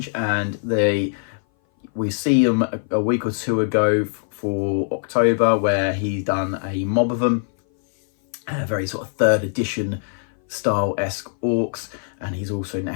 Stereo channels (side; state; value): right; silent; 59 dB below the other